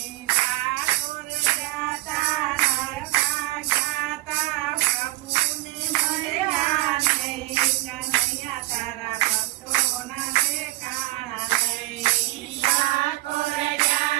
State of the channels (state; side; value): quieter; left; 18.3 dB